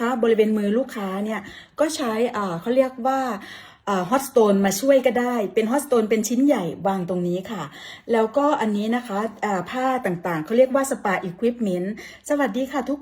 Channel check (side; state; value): both; identical; correlation 1.00